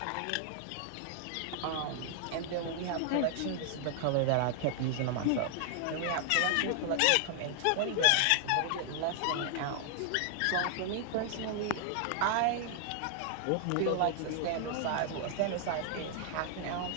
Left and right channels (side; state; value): both; different; correlation 0.00